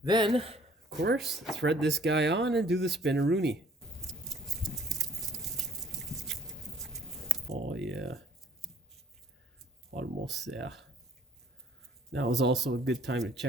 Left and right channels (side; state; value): both; normal; correlation 0.58